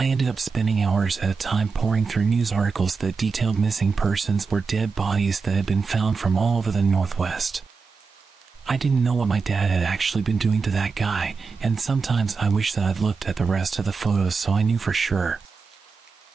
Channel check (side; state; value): left; quieter; 4.8 dB